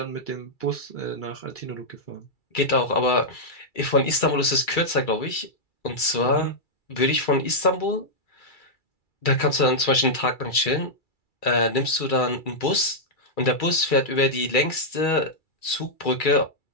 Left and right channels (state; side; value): late; right; 2.3 ms